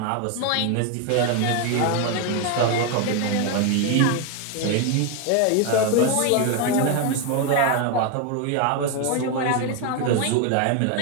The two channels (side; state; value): both; different; correlation 0.01